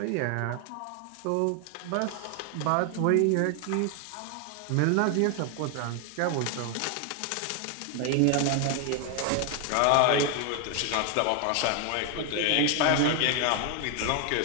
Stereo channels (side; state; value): both; different; correlation 0.00